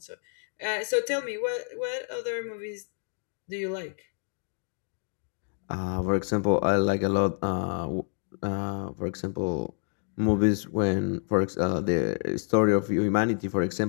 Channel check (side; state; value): right; silent; digital silence